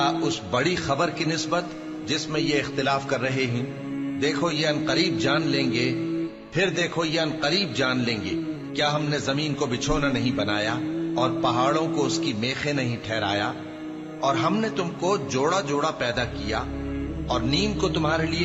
اس بڑی خبر کی نسبت جس میں یہ اختلاف کر رہے ہیں؟ دیکھو یہ عنقریب جان لیں گے، پھر دیکھو یہ عنقریب جان لیں گے۔ کیا ہم نے زمین کو بچھونا نہیں بنایا اور پہاڑوں کو اس کی میخیں نہیں ٹھہرایا؟ اور ہم نے تم کو جوڑا جوڑا پیدا کیا اور نیند کو تمہارے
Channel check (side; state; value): both; identical; correlation 1.00